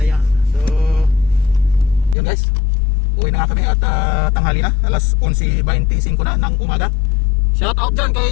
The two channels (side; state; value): right; drops out; at 2.1 s